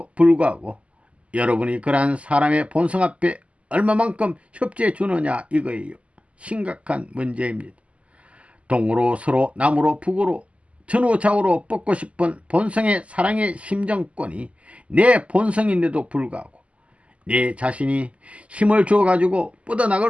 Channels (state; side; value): late; left; 0.062 ms